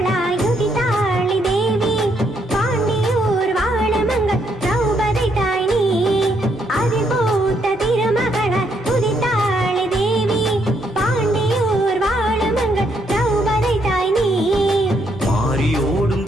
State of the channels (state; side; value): normal; both; correlation 0.74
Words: உதித்தாளி தேவி பாண்டியூர் வாழமங்கள் திரௌபதி தாய் நீ அதில் பூத்த திருமகளாய் உதித்தாளி தேவி பாண்டியூர் வாழமங்கள் திரௌபதி தாய் நீ மாறியோடும்